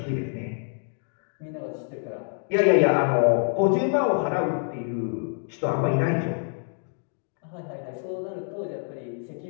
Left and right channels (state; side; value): silent; right; 56 dB below the other